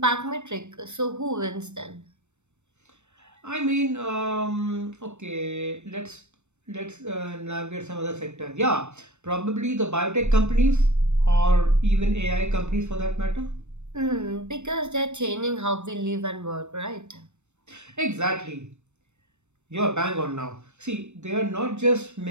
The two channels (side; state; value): left; late; 0.82 ms